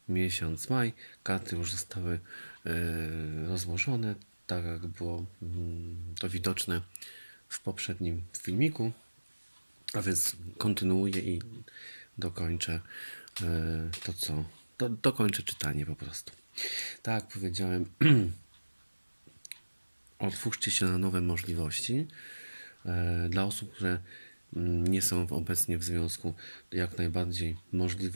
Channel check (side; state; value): both; inverted; correlation -1.00